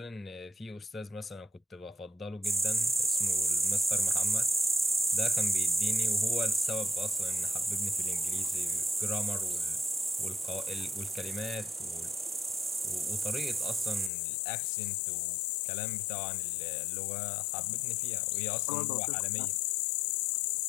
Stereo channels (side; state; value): right; drops out; at 14.1 s